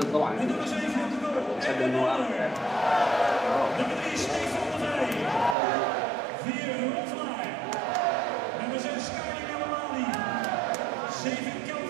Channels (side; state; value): left; drops out; at 5.6 s